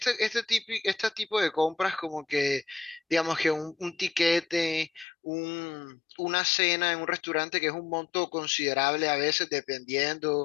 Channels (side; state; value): right; drops out; at 5.1 s